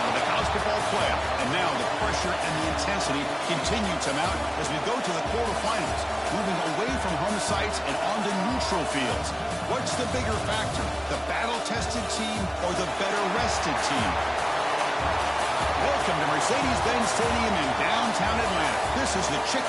of the college football playoff, and now the pressure and the intensity continue to mount as we go to the quarterfinals, moving away from home sites and onto neutral fields. What's the bigger factor, the battle-tested team or the better-rested team? Welcome to Mercedes-Benz Stadium in downtown Atlanta. This is the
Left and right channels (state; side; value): identical; both; correlation 1.00